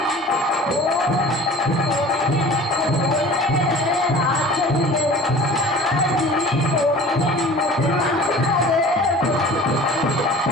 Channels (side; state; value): both; normal; correlation 0.43